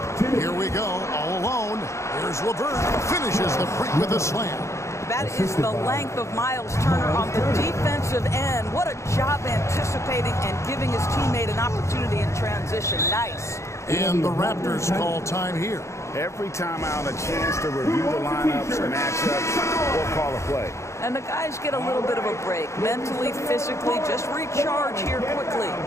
Here we go, all alone. Here's LeVert. Finishes the break with a slam. That is the length of Miles Turner on the defensive end. What a job anticipating and giving his teammate an opportunity in transition. Nice. And the Raptors call time here. Every time out, a chance to review the lineups, matchups, or call a play. And the guys get a little bit of a break. Mentally, physically, just recharge here quickly.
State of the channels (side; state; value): right; late; 0.14 ms